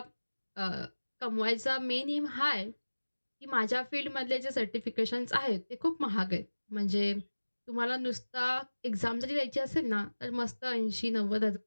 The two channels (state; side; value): inverted; both; correlation -1.00